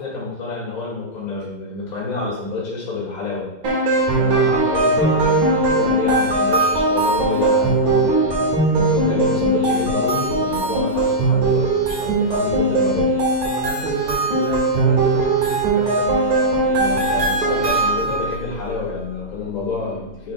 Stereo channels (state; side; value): late; right; 2.0 ms